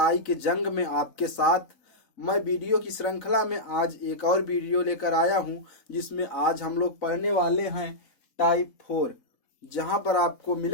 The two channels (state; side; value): late; right; 3.9 ms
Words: के जंग में आपके साथ मैं वीडियो की श्रृंखला में आज एक और वीडियो लेकर आया हूं, जिसमें आज हम लोग पढ़ने वाले हैं टाइप 4, जहां पर आपको